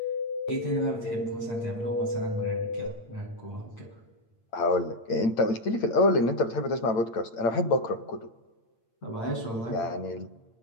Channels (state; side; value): late; right; 8.8 ms